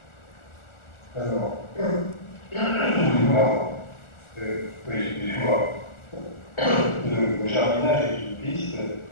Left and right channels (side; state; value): right; late; 1.4 ms